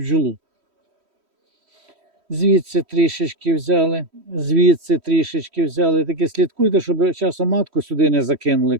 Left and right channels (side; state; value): left; late; 3.1 ms